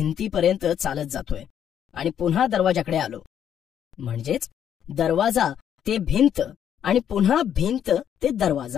चालत जातोय आणि पुन्हा दरवाजाकडे आलो. म्हणजेच दरवाजा ते भिंत आणि पुन्हा भिंत ते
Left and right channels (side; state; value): right; quieter; 9.4 dB